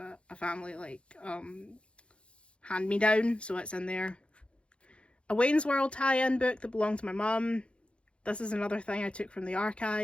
family like hand-me-down, so it's in there. A Wayne's World tie-in book that belonged to my mum. This is another thing I took from the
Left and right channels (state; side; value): late; right; 0.058 ms